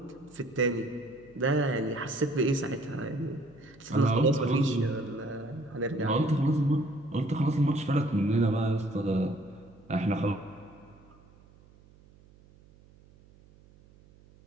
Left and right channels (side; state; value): right; noise; hum, 26 dB below the sound